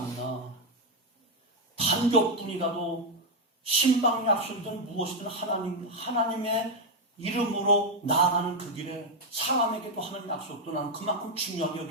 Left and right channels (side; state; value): both; normal; correlation 0.03